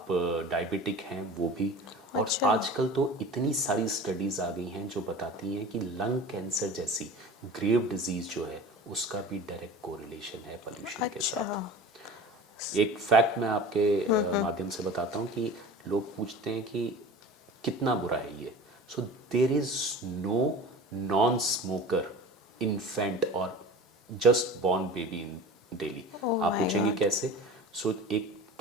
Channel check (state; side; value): normal; both; correlation 0.37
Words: डायबिटिक हैं वो भी। और आजकल तो इतनी सारी स्टडीज़ आ गई हैं जो बताती हैं कि लंग कैंसर जैसी ग्रेव डिजीज़ जो है उसका भी डायरेक्ट कोरिलेशन है पोल्यूशन के साथ। एक फैक्ट मैं आपके माध्यम से बताता हूँ कि लोग पूछते हैं कि कितना बुरा है ये। So there is no non smoker infant और just born baby in Delhi. आप पूछेंगे कैसे? सो एक